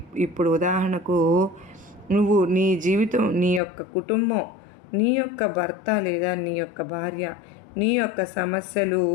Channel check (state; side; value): drops out; right; at 3.6 s